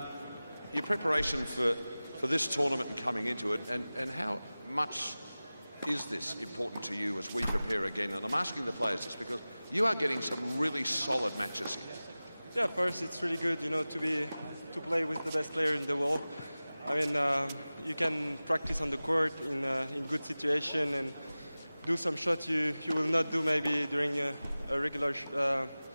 Your preparation for this tournament and coming into it, and how much is this important to you as we prepare again? And I'm asking the players this because you are getting some really solid matches here. Yeah, first it's really good, you know, to play with the best player in the world. I mean, you can practice on the court in good situation and do some shots you will not do maybe during a regular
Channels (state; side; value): inverted; both; correlation -0.98